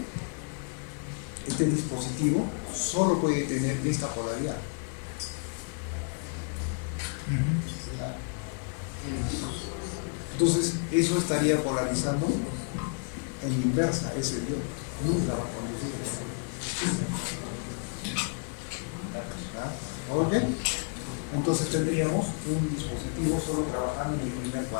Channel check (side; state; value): right; quieter; 39.3 dB